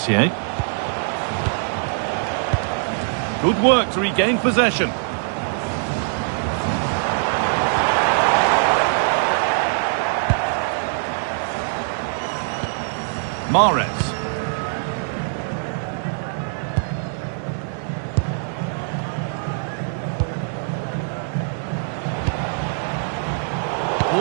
Good work to regain possession. Mahrez.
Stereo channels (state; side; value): silent; left; digital silence